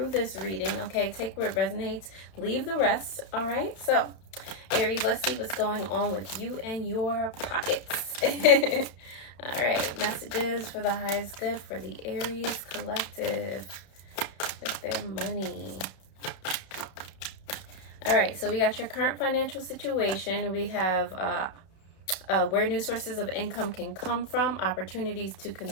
this reading. Okay, take what resonates, leave the rest. All right, so Aries, let's see what's going on with you and your pockets. All right, messages for the highest good for the Aries collective with their money. All right, so we got your current financial situation. We have where new sources of income can come from, opportunities to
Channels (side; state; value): right; late; 32 ms